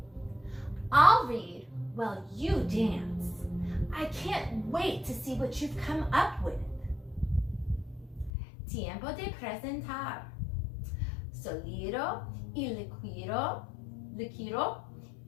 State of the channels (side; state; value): right; drops out; at 8.3 s